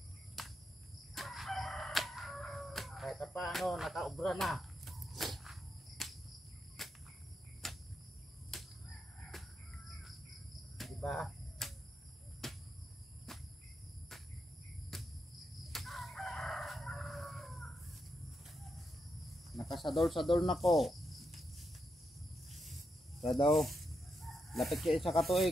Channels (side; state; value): both; normal; correlation 0.83